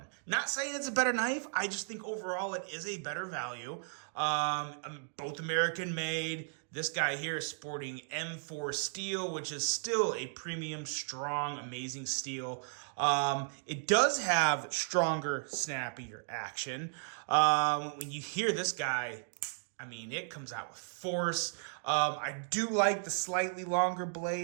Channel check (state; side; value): silent; left; digital silence